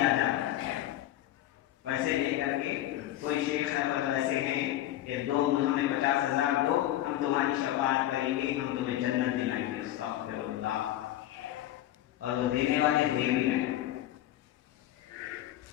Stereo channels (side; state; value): right; quieter; 13.6 dB